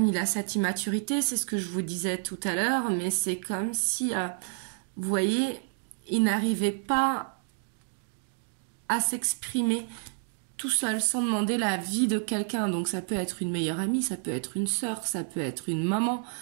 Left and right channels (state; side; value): silent; left; digital silence